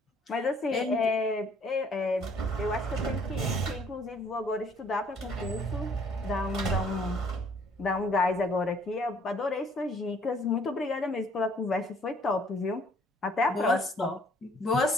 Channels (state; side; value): normal; both; correlation 0.61